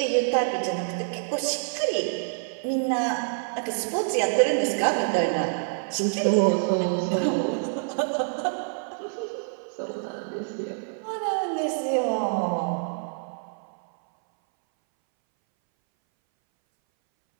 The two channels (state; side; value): silent; left; 60 dB below the other